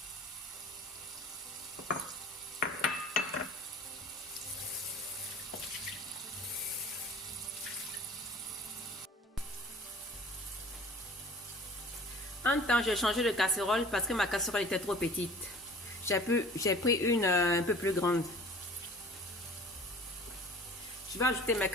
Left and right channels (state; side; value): normal; both; correlation 0.45